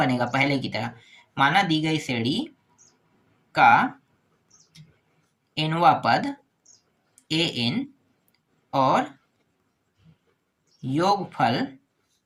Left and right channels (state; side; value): identical; both; correlation 1.00